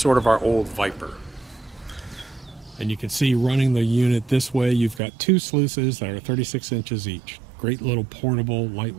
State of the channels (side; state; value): left; drops out; at 5.0 s